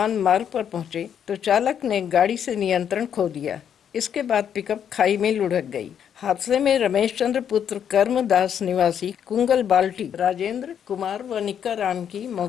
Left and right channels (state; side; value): quieter; right; 8.7 dB